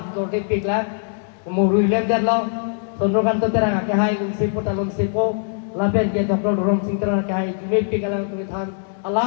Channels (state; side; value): silent; right; digital silence